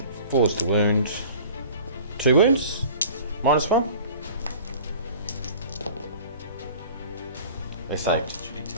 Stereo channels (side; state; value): both; inverted; correlation -0.45